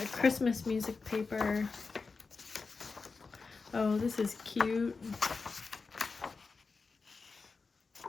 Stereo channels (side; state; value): right; quieter; 4.4 dB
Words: Christmas music paper. Oh, this is cute.